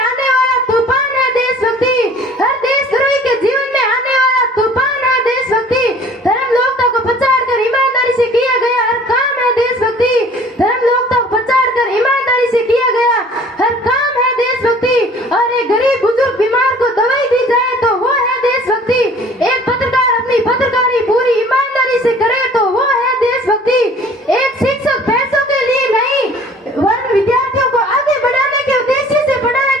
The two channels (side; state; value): both; normal; correlation 0.50